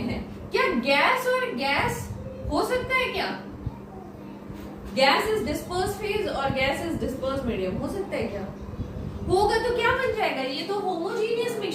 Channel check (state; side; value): identical; both; correlation 1.00